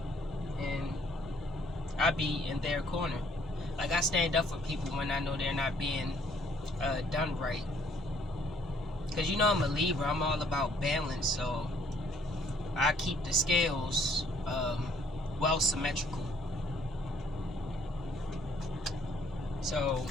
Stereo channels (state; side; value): normal; both; correlation 0.63